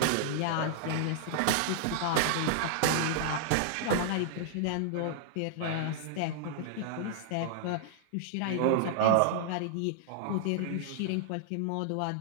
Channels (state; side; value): different; both; correlation -0.01